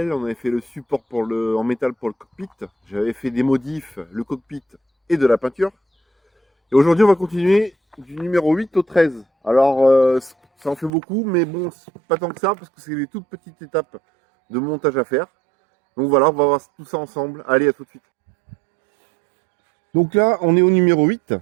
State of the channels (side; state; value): left; drops out; at 10.9 s